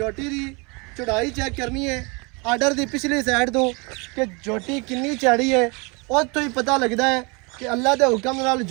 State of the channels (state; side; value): quieter; left; 29.8 dB